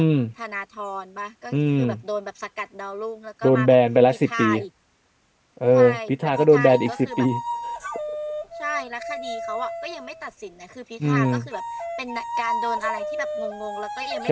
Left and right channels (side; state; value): both; identical; correlation 1.00